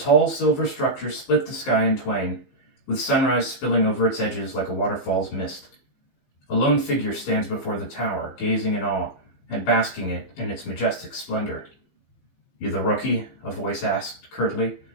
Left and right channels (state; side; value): late; right; 15 ms